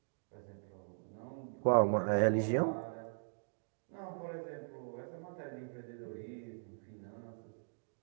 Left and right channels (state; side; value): silent; left; digital silence